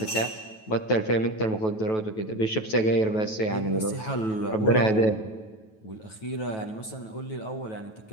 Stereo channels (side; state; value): right; late; 9.2 ms